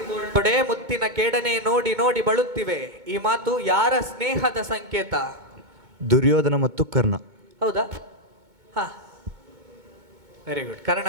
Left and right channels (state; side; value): late; left; 2.2 ms